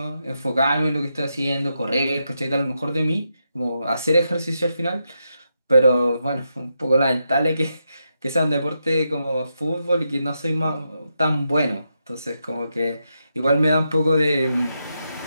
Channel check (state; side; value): inverted; both; correlation -0.84